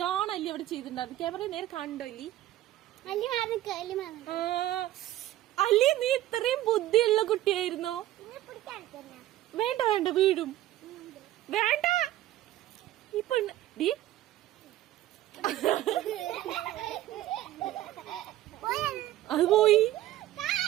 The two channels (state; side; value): quieter; left; 14.4 dB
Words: അല്ലി അവിടെ ചെയ്തിട്ടുണ്ടായിരുന്നു. ക്യാമറ നേരെ കണ്ടോ അല്ലി? അല്ലി നീ ഇത്രയും ബുദ്ധിയുള്ള കുട്ടിയായിരുന്നോ? വേണ്ട വേണ്ട, വീഴും. വേണ്ട ഇപ്പൊ അത് പോയി.